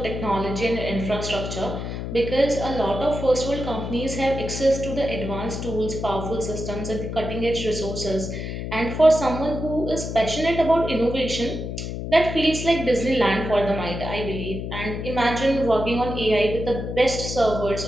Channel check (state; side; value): noise; left; hum, 5 dB below the sound